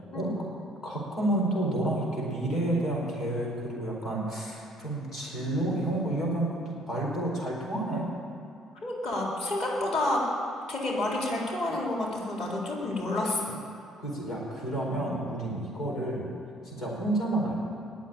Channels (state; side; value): normal; both; correlation 0.59